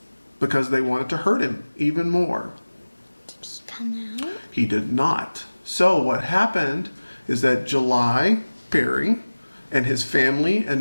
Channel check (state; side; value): inverted; both; correlation -1.00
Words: because they wanted to hurt him even more. Did he come out? He did not. So what happened is that July Perry and his family